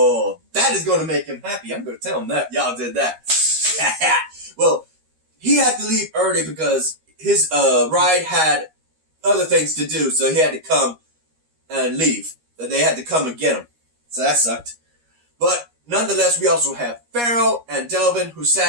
that is going to make him happy. I'm going to tell him that. Y'all did that. Well, he had to leave early because his ride had other things to do, so he had to come and leave. They had to come and get him. So that sucked. But nonetheless, we also have Pharaoh and Delvin, who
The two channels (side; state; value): left; late; 13 ms